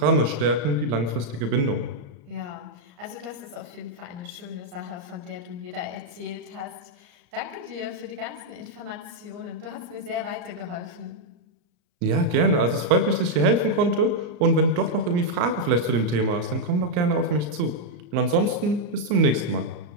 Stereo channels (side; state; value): left; late; 34 ms